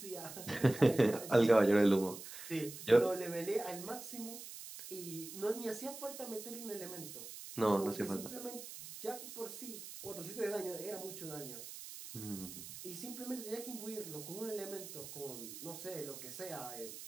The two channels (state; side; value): noise; right; hiss, 11 dB below the sound